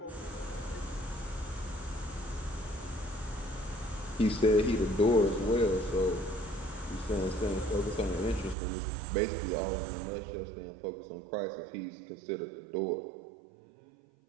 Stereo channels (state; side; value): drops out; left; at 8.6 s